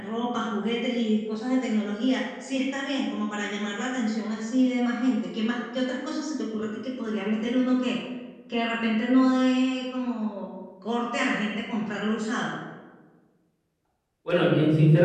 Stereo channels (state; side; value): identical; both; correlation 1.00